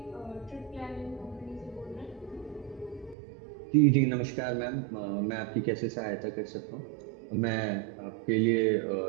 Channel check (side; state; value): left; drops out; at 3.2 s